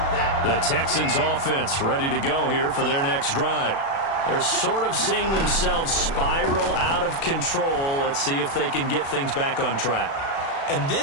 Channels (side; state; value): right; late; 36 ms